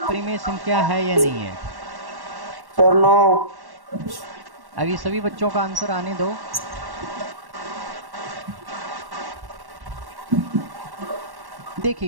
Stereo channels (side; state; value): left; late; 1.1 ms